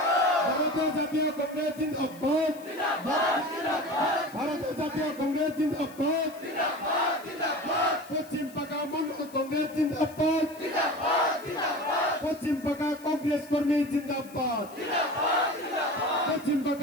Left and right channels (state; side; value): noise; left; hiss, 22 dB below the sound